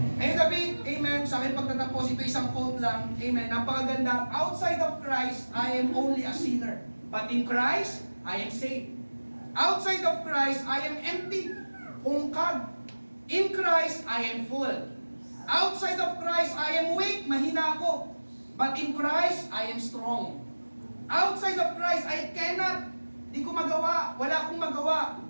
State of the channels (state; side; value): inverted; both; correlation -1.00